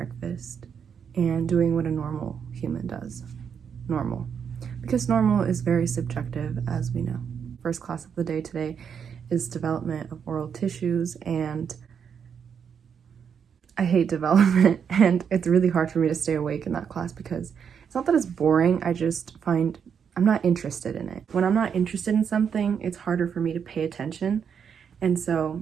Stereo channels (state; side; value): quieter; left; 7.3 dB